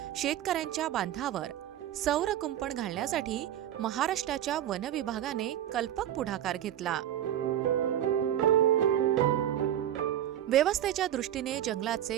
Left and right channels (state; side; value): quieter; left; 11.4 dB